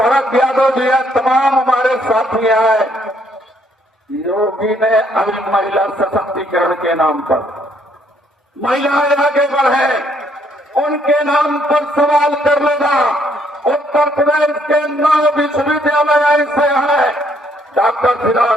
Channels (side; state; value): both; normal; correlation 0.68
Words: यादव जी है, तमाम हमारे साथी हैं। योगी ने अभी महिला सशक्तिकरण के नाम पर महिलाएं आगे बढ़े, उनके नाम पर सवाल कर लेना। उत्तर प्रदेश के 9 विश्वविद्यालय ऐसे हैं, डॉक्टर फिदा